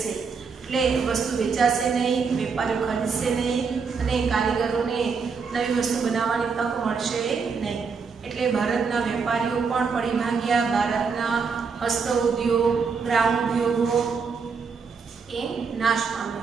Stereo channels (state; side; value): quieter; left; 5.4 dB